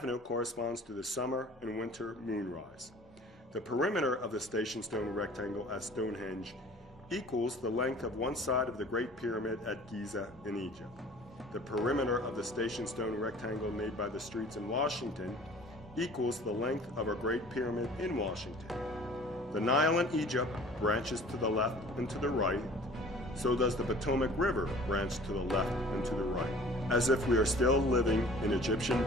corresponds to the summer and winter moonrise. The perimeter of the station stone rectangle at Stonehenge equals the length of one side of the Great Pyramid at Giza in Egypt. The perimeter of the station stone rectangle made by the streets in Washington equals the length of a Great Pyramid in Washington. The Nile in Egypt branches to the left and to the right, so does the Potomac River branch to the left and to the right, as if we are still living in Egyptian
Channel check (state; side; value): normal; both; correlation 0.48